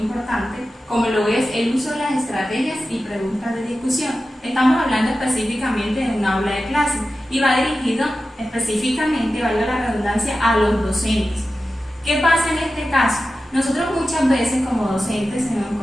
como lo es el uso de las estrategias y preguntas de discusión. Estamos hablando específicamente de un aula de clase y va dirigido específicamente, valga la redundancia, a los docentes. ¿Qué pasa en este caso? Nosotros muchas veces como docentes, si nos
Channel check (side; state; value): both; normal; correlation 0.93